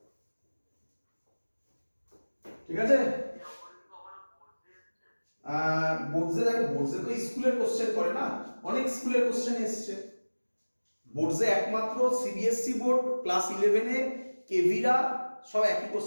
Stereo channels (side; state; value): both; inverted; correlation -1.00